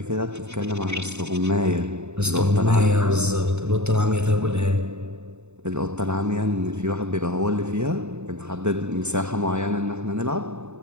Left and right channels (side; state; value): left; late; 0.82 ms